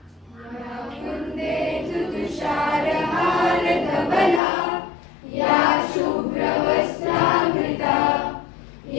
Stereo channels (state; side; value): drops out; right; at 4.4 s